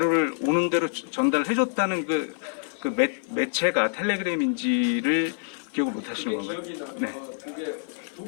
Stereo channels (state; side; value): silent; right; 55 dB below the other